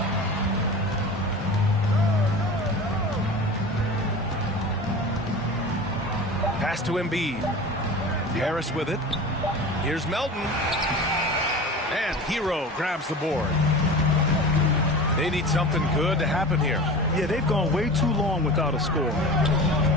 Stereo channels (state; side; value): normal; both; correlation 0.34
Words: Pass to Embiid. Harris with it. Here's Melton. And Hero grabs the board. They need something good to happen here. Yeah, they've gone way too long without a score.